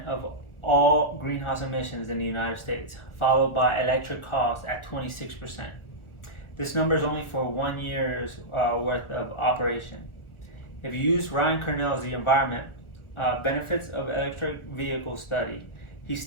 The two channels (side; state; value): right; late; 1.4 ms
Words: of all greenhouse emissions in the United States, followed by electric cars at 26%. This number is only for 1 year's worth of operation. If you use Ryan Kernell's The Environment Benefits of Electric Vehicle study, he